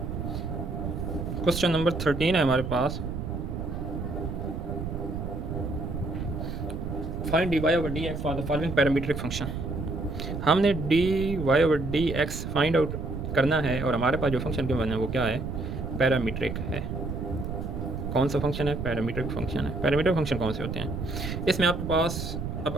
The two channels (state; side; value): noise; right; rumble, 5 dB below the sound